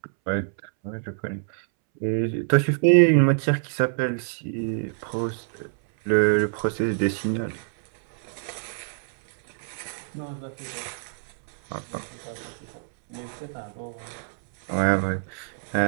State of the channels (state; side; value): silent; left; 61 dB below the other